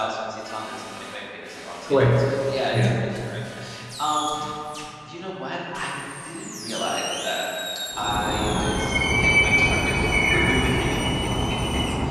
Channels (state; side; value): identical; both; correlation 1.00